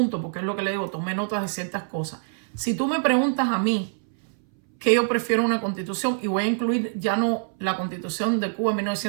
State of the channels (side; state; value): left; silent; 62 dB below the other